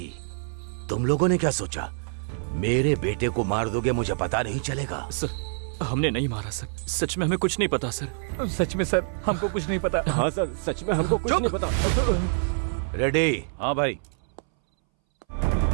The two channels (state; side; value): silent; left; 61 dB below the other